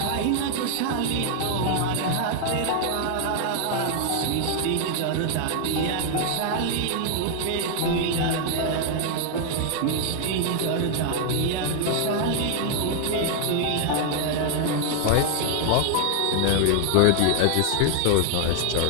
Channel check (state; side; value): different; both; correlation 0.00